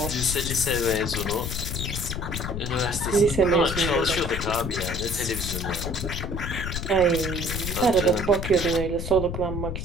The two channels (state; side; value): noise; left; rumble, 4 dB below the sound